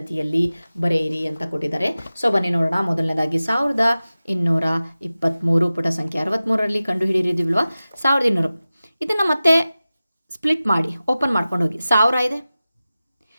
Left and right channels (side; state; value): both; inverted; correlation -0.96